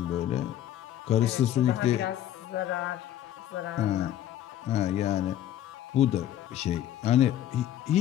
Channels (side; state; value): right; quieter; 11.9 dB